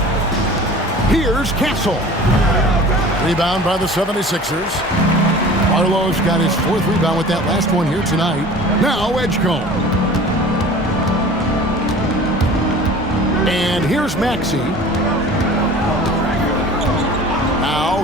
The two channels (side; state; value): both; normal; correlation 0.42